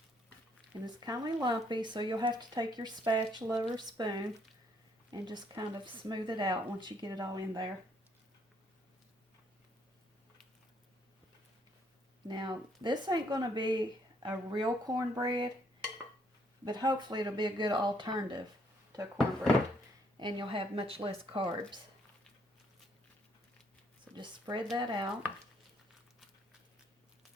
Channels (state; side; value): normal; both; correlation 0.69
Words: And it's kind of lumpy, so you'll have to take your spatula or spoon and just kind of smooth it out once you get it all in there. Now, this ain't going to be a real cornbread, but hopefully it'll be a good alternative to cornbread, and you'll have much less carbs. So just spread that out.